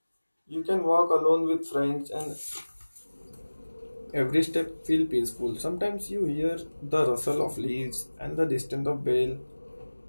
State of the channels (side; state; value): both; inverted; correlation -1.00